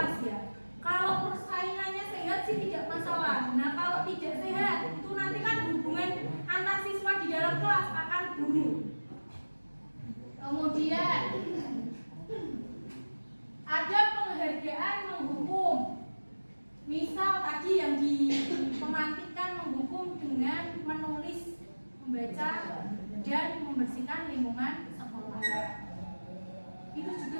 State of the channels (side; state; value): both; inverted; correlation -1.00